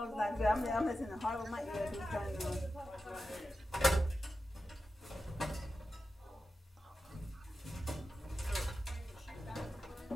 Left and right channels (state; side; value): normal; both; correlation 0.91